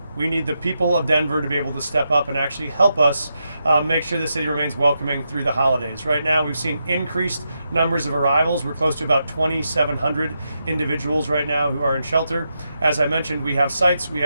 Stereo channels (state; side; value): inverted; both; correlation -0.85